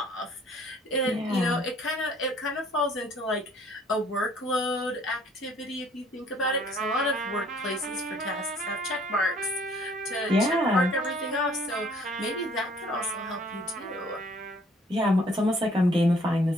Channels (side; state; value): both; normal; correlation 0.59